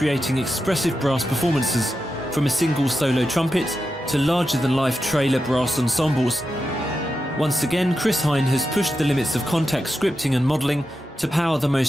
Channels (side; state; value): both; normal; correlation 0.89